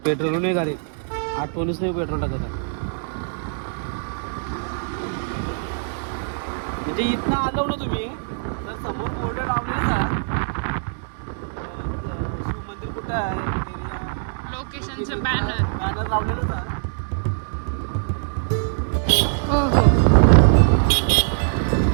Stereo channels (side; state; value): left; silent; digital silence